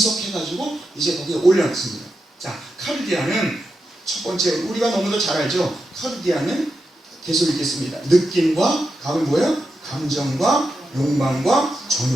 이제 거기에 올려놨습니다. 자, 카르디아는 첫 번째, 우리가 너무도 잘 알죠? 카르디아는 계속 읽겠습니다. 느낌과, 다음은 뭐예요? 감정과 욕망과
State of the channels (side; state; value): both; normal; correlation 0.87